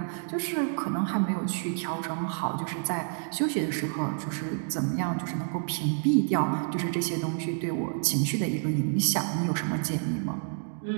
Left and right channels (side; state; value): left; silent; 59 dB below the other